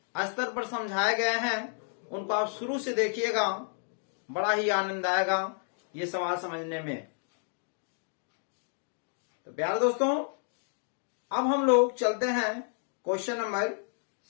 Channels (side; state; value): right; silent; 57 dB below the other